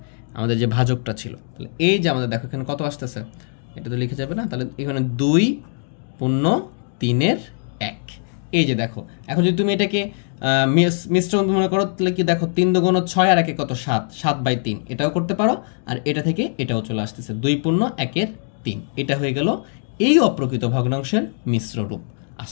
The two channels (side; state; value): right; silent; 57 dB below the other